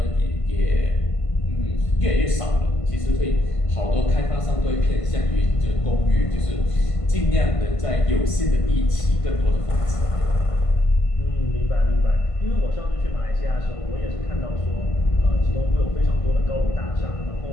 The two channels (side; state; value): right; late; 1.5 ms